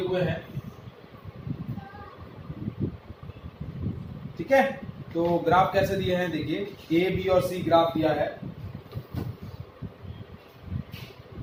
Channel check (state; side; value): identical; both; correlation 1.00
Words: हुए हैं. ठीक है, तो ग्राफ कैसे दिए हैं देखिए, ए बी और सी ग्राफ दिया है.